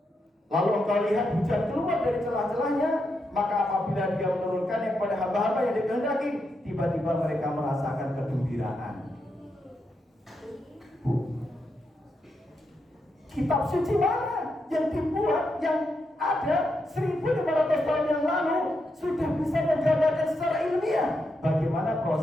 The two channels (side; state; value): both; normal; correlation 0.83